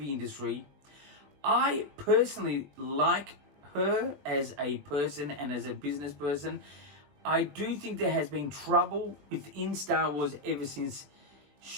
industry. I personally like her as a person and as a business person. I do think there has been trouble within Star Wars ever since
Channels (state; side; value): late; left; 21 ms